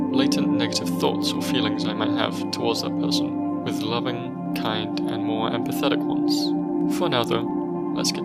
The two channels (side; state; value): both; identical; correlation 1.00